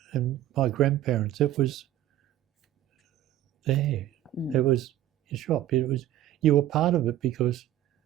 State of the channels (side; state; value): left; quieter; 12.9 dB